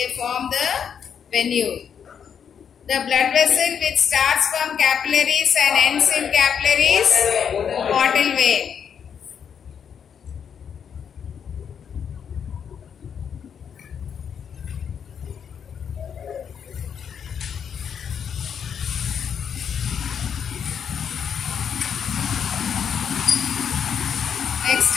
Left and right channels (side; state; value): right; quieter; 7.6 dB